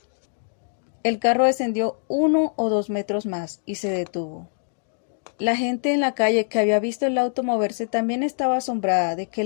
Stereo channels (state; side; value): silent; right; digital silence